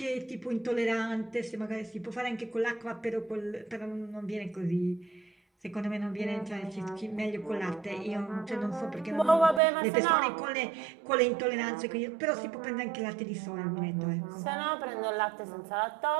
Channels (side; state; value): left; drops out; at 9.6 s